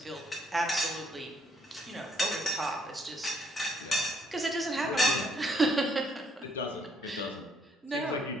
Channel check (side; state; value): both; normal; correlation 0.67